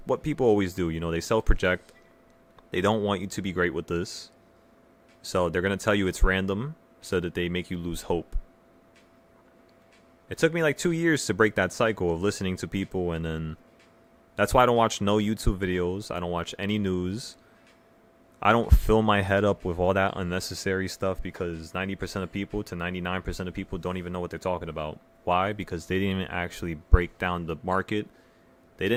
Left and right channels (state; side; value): identical; both; correlation 1.00